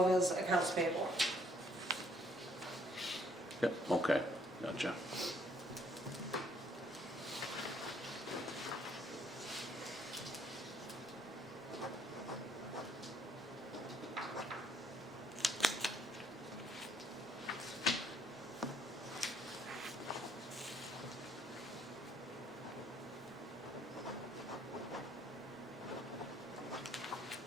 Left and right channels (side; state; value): both; normal; correlation 0.65